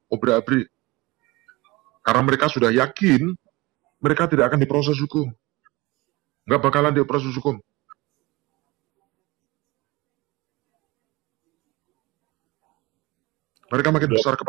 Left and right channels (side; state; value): left; quieter; 22.4 dB